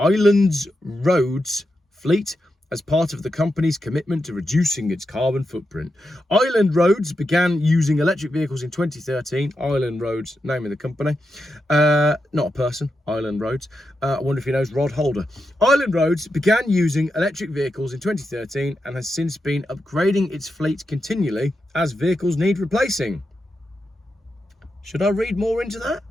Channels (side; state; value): both; normal; correlation 0.87